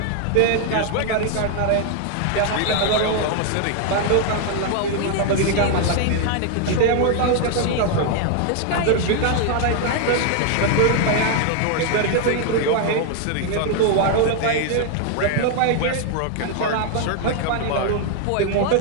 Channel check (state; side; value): different; both; correlation 0.00